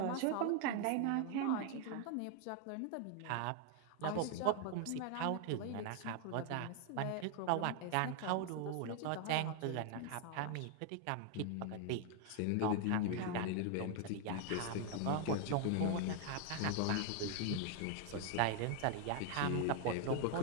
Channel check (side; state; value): both; different; correlation 0.00